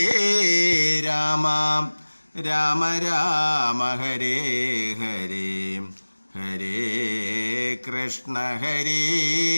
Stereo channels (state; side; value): inverted; both; correlation -1.00